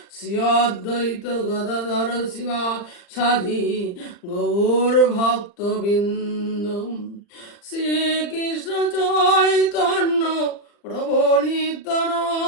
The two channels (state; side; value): late; right; 40 ms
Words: শ্রী অদ্বৈত গদাধর শিবাসাদি গৌর ভক্তবৃন্দ। শ্রীকৃষ্ণ চৈতন্য প্রভু